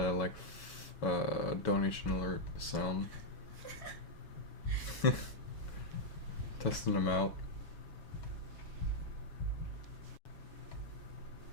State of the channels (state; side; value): late; right; 7.2 ms